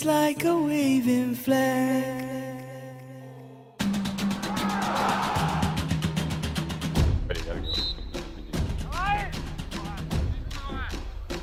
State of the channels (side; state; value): both; identical; correlation 1.00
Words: like a waving flag.